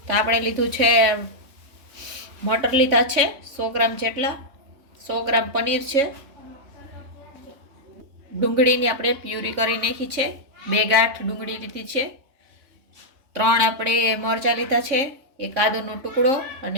તો આપણે લીધું છે મટર લીધા છે 100 ગ્રામ જેટલા, 100 ગ્રામ પનીર છે, ડુંગળીની આપણે પ્યુરી કરી નાખી છે, 2 ગાંઠ ડુંગળી લીધી છે, 3 આપણે મરચાં લીધા છે, 1 આદુનો ટુકડો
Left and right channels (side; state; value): left; late; 3.6 ms